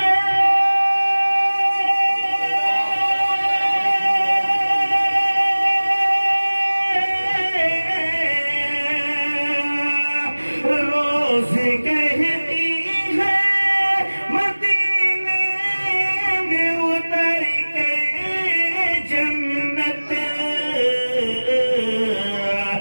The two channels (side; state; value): both; inverted; correlation -1.00